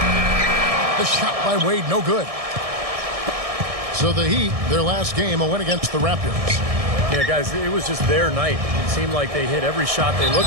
The shot by Wade, no good. So the Heat, their last game, a win against the Raptors. Yeah, guys, it was just their night. It seemed like they hit every shot they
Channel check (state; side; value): late; left; 1.6 ms